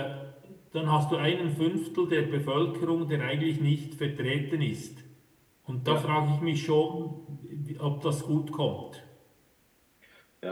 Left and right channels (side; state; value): both; identical; correlation 1.00